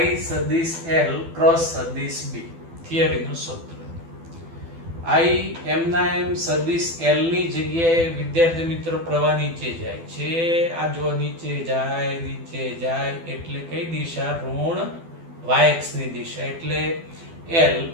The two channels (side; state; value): left; late; 12 ms